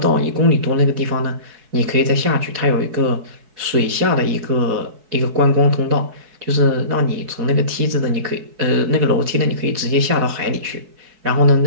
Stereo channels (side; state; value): left; late; 4.6 ms